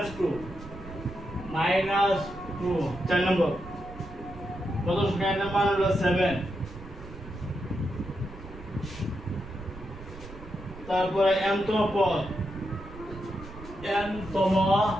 চার নম্বর কত সংখ্যার মান হলো 7 তারপরে m তম পদ n তম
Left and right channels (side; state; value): right; noise; rumble, 15 dB below the sound